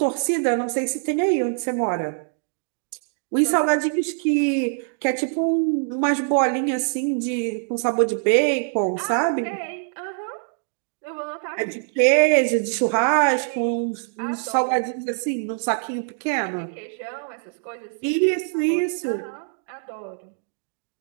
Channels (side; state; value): left; silent; digital silence